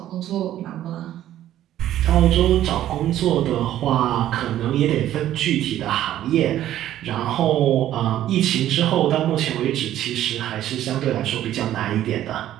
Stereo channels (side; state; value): left; quieter; 12.5 dB